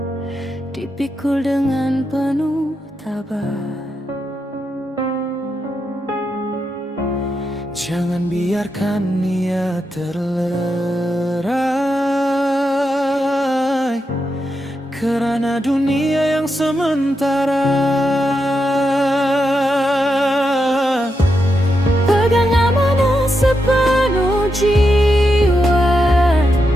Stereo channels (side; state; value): both; normal; correlation 0.85